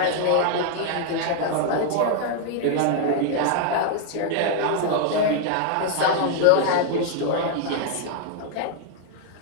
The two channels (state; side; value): different; both; correlation 0.00